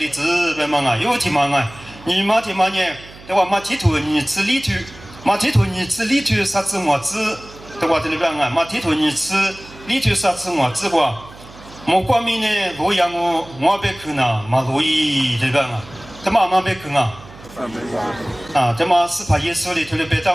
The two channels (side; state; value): right; noise; hum, 20 dB below the sound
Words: 子呗嘛有天嘛你嘛呢，对吧？嘛提头你吃里头，嘛提头你吃里头啥子么子？对吧？这里边啊，马提托尼吃，里头啥吃我吃过，莫光明呢，洛阳我别去呢，马洛伊这边啊，他妈别去啊。啊，这嘛是怕耶稣里头的别他